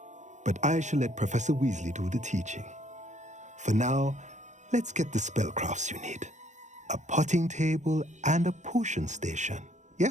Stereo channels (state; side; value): late; left; 0.34 ms